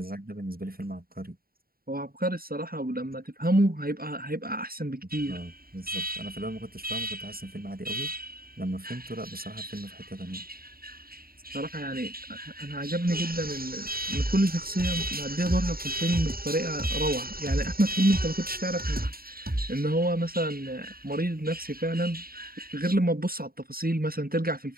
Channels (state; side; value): late; left; 0.43 ms